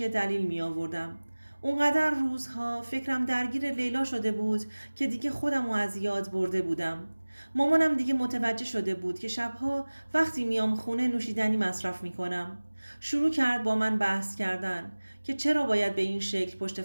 دلیل می آوردم. اونقدر روزها فکرم درگیر لیلا شده بود که دیگه خودمو از یاد برده بودم. مامانم دیگه متوجه شده بود که شبها وقتی میام خونه نوشیدنی مصرف میکنم. شروع کرد با من بحث کردن که چرا باید به این شکل پشت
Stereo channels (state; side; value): inverted; both; correlation -1.00